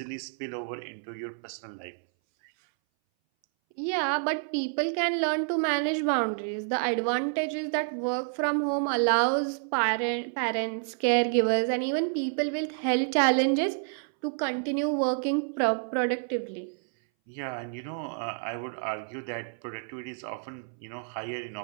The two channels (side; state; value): left; silent; 59 dB below the other